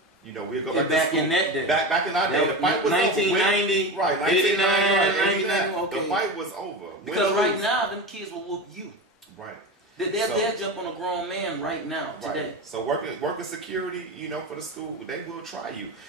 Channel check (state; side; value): normal; both; correlation 0.24